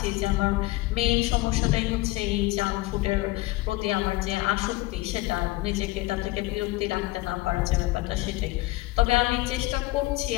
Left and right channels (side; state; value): right; quieter; 19.4 dB